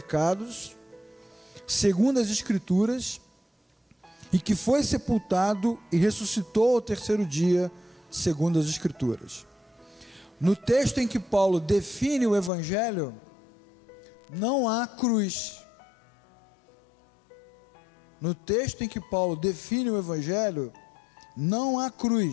segundo as Escrituras, e que foi sepultado e ressuscitou ao terceiro dia, segundo as Escrituras. No texto em que Paulo define o Evangelho, não há cruz. No texto em que Paulo define o Evangelho, não há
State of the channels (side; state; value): right; drops out; at 12.5 s